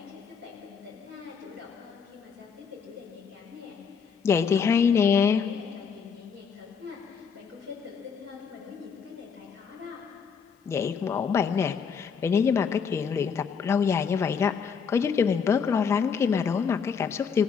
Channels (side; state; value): right; quieter; 6.3 dB